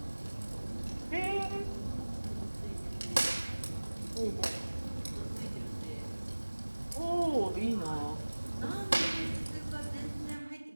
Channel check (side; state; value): both; inverted; correlation -1.00